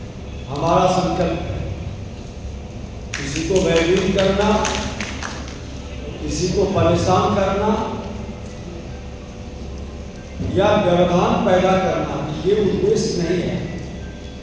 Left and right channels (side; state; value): both; identical; correlation 1.00